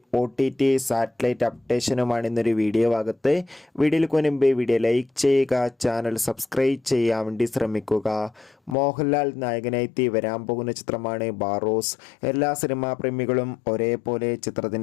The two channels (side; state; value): right; drops out; at 8.8 s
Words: OTT സാറ്റലൈറ്റ് അപ്ഡേഷനുമാണ് ഇന്നൊരു വീഡിയോ ഭാഗത്ത്. വീഡിയോയിൽ മുൻപേ വീഡിയോ ലൈക്ക് ചെയ്യുക, ചാനൽ സബ്സ്ക്രൈബ് ചെയ്യാൻ വേണ്ടി ശ്രമിക്കുക. മോഹൻലാൽ നായകനായി വരാൻ പോകുന്ന ചിത്രമാണ് ബാറോസ്. എല്ലാ സിനിമാ പ്രേമികളും ഒരേപോലെ